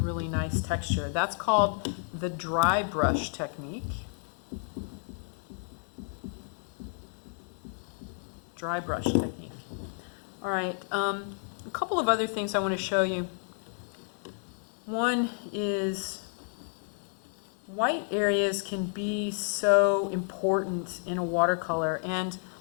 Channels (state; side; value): silent; right; 57 dB below the other